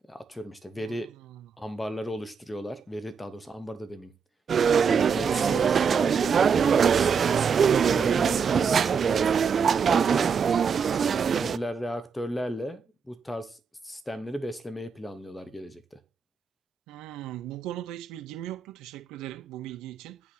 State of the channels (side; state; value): left; quieter; 6.1 dB